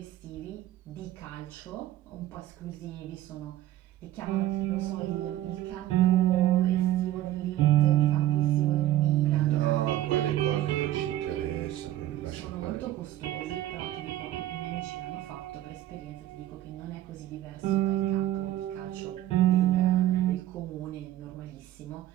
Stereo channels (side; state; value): left; quieter; 13.8 dB